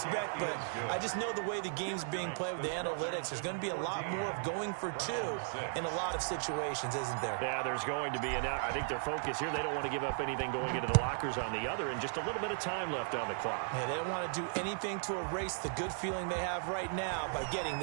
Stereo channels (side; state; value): left; silent; 54 dB below the other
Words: But I just know the way the game's being played with the analytics, there's going to be a lot more of going for 2 in a lot of situations, isn't there? Yeah, there's going to be. And I think their focus here, they don't want to give up anything going into the lockers on the other, and just a little bit of time left on the clock. Yeah, they don't want to do anything to erase the good feeling they have right now by getting